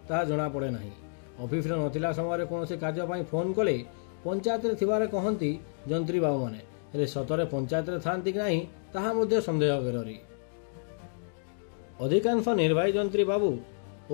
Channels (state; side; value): silent; right; digital silence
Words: ताहा जणा पड़े नाही। ऑफिस रे नथिला समय रे कोनोसी कार्य पई फोन कले पंचायत रे थिबारे कहंती जंत्री बाबू माने, हेले सतरे पंचायत रे थांती कि नाही ताहा मध्ये संदेह करेरी। अधिकांश निर्वाही जंत्री बाबू